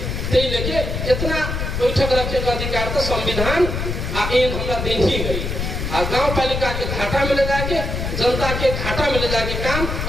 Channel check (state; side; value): noise; left; rumble, 3 dB below the sound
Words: ते लेके इतना बैठक रखे का अधिकार तो संविधान आ एन हमरा देन ही है। आ गाँव पालिका के घाटा में ले जाके जनता के घाटा में ले जाके काम